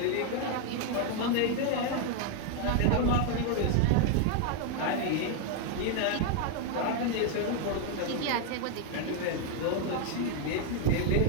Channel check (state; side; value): different; both; correlation 0.00